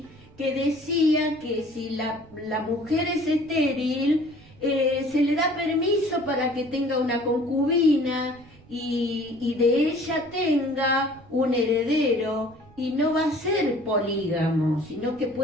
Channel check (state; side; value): noise; right; rumble, 25 dB below the sound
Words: que decía que si la mujer es estéril, se le da permiso para que tenga una concubina y de ella tenga un heredero, y no va a ser polígamo, sino que